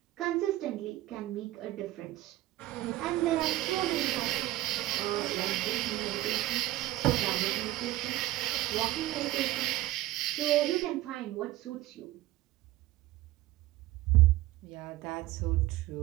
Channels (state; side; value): quieter; left; 16.2 dB